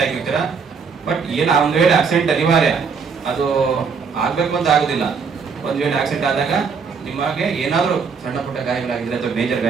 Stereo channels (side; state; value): left; quieter; 5.6 dB